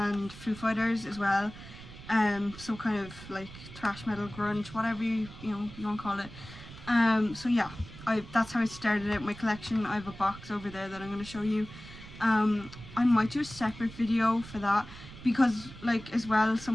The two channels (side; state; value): right; noise; rumble, 15 dB below the sound